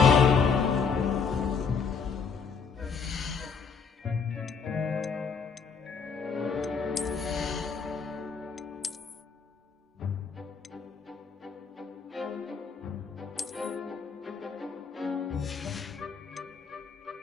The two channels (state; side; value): quieter; right; 5.6 dB